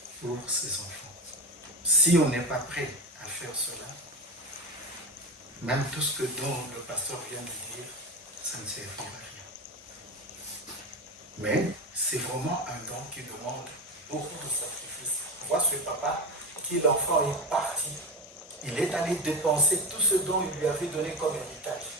pour ses enfants. Si on n'est pas prêt à faire cela, même tout ce dont le pasteur vient de dire, ça ne servira à rien. Mais c'est vraiment un don qui demande beaucoup de sacrifices. Moi, ce papa, qui l'enfant est parti, il est allé dépenser tout ce dont il lui avait donné comme héritage.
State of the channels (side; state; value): both; normal; correlation 0.17